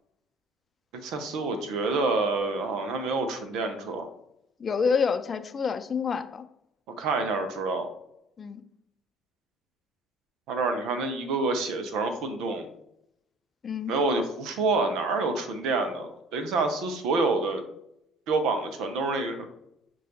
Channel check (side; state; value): both; normal; correlation 0.50